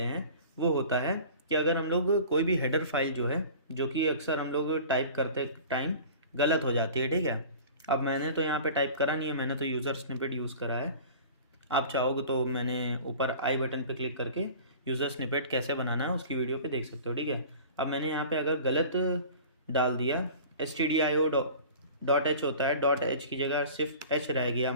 हैं वो होता है कि अगर हम लोग कोई भी हेडर फाइल जो है, जो कि अक्सर हम लोग टाइप करते टाइम गलत हो जाती है। ठीक है, अब मैंने तो यहाँ पे टाइप करा नहीं है, मैंने तो यूज़र स्निपेट यूज़ करा है। आप चाहोगे तो मैंने ऊपर आई बटन पे क्लिक करके यूज़र स्निपेट कैसे बनाना है उसकी वीडियो पे देख सकते हो। ठीक है, अब मैंने यहाँ पे अगर गलत डाल दिया, stdio.h होता है, डॉट एच की जगह सिर्फ एच रह गया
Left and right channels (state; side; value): inverted; both; correlation -0.41